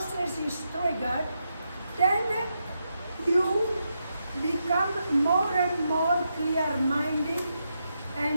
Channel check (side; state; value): both; inverted; correlation -0.84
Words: is triggered, then you become more and more clear-minded